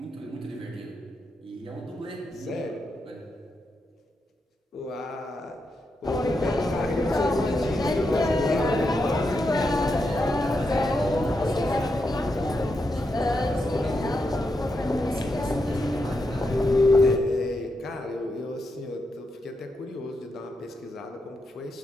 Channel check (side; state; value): both; normal; correlation 0.84